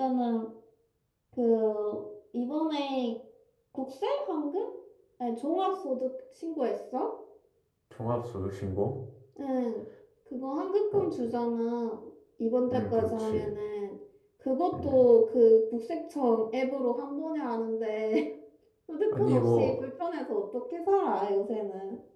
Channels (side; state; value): both; identical; correlation 1.00